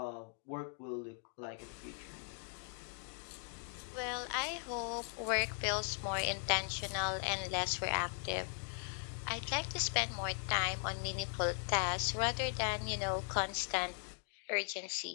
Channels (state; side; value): silent; right; 52 dB below the other